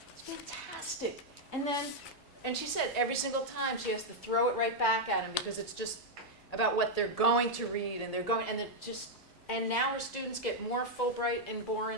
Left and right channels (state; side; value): normal; both; correlation -0.02